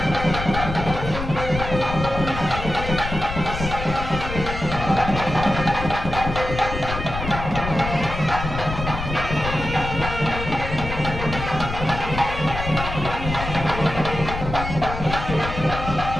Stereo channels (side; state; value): left; noise; rumble, 6 dB below the sound